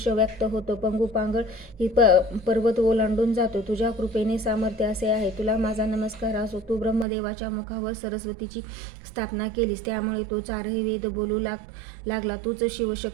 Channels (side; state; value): left; drops out; at 7.1 s